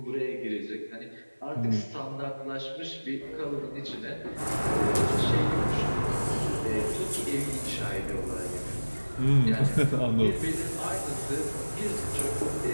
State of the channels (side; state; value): both; inverted; correlation -1.00